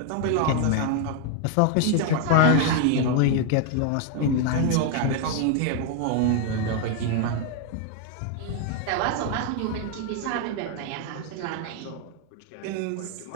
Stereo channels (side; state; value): both; different; correlation 0.00